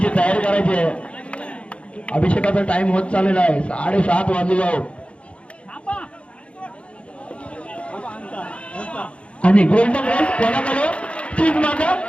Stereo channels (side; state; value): right; late; 0.060 ms